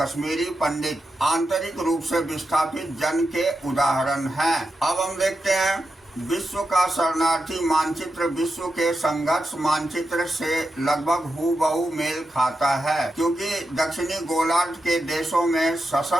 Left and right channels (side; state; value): both; normal; correlation 0.88